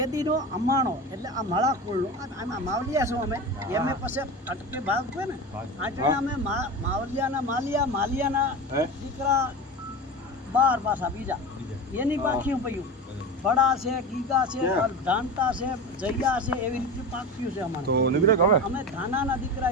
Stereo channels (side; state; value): both; normal; correlation 0.27